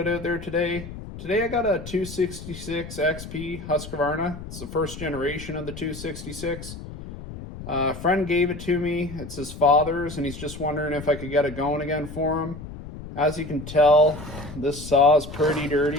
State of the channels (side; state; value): left; noise; rumble, 12 dB below the sound